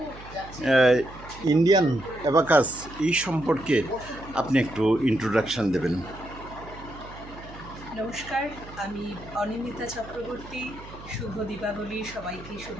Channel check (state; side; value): noise; right; hum, 16 dB below the sound